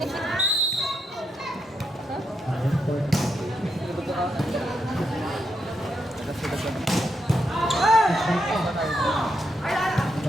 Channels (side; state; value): both; normal; correlation 0.81